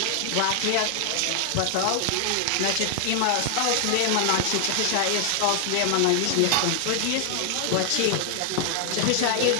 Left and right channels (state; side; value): different; both; correlation 0.00